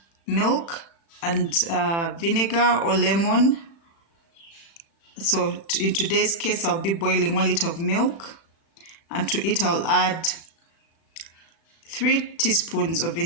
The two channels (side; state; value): right; late; 36 ms